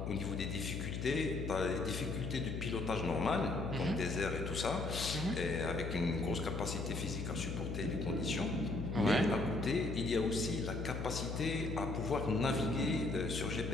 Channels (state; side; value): noise; left; hum, 4 dB below the sound